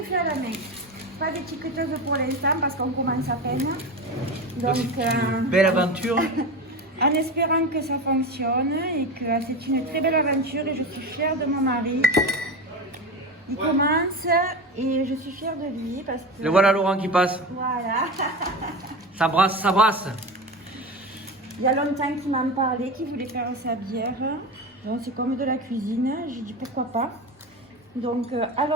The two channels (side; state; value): both; normal; correlation 0.24